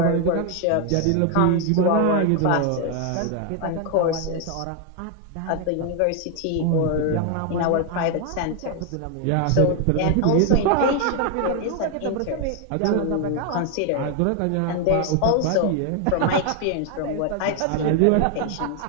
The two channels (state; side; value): different; both; correlation 0.01